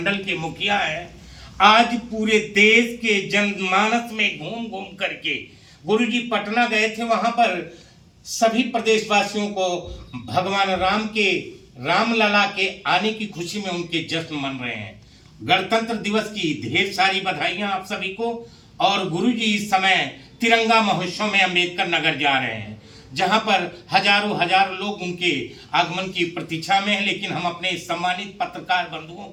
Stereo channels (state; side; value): identical; both; correlation 1.00